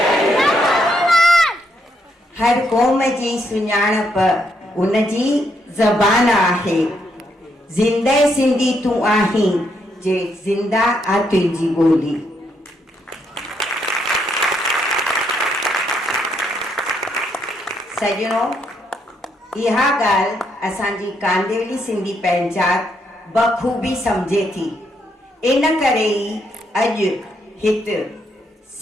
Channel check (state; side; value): normal; both; correlation 0.76